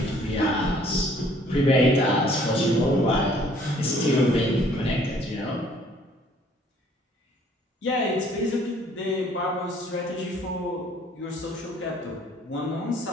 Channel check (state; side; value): normal; both; correlation 0.59